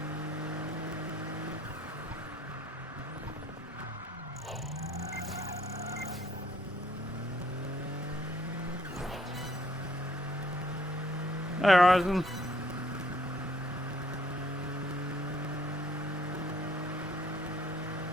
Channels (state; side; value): normal; both; correlation 0.63